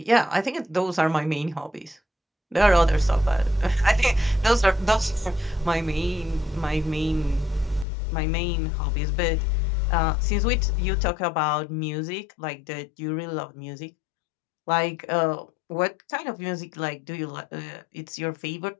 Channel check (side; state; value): right; drops out; at 7.9 s